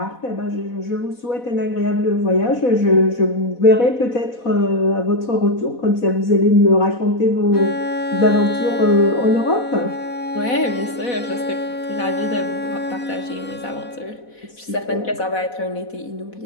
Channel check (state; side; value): late; right; 4.1 ms